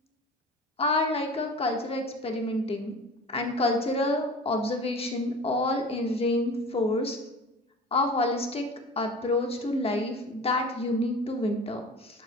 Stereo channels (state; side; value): normal; both; correlation 0.38